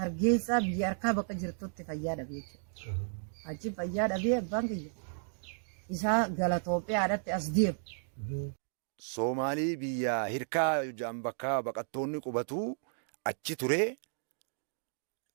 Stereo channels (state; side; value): silent; left; digital silence